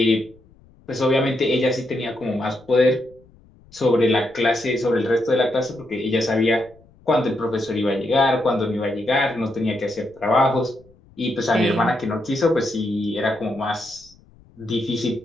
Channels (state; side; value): noise; left; rumble, 28 dB below the sound